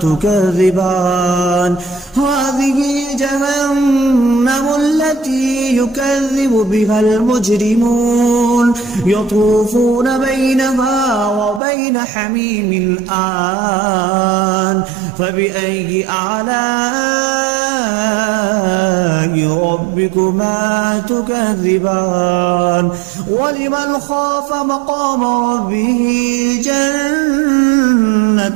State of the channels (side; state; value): left; drops out; at 11.6 s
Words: تكذبان هذه جهنم التي يكذب بها المجرمون يطوفون بينها وبين حميم آن فبأي آلاء ربكما تكذبان ولمن خاف مقام ربه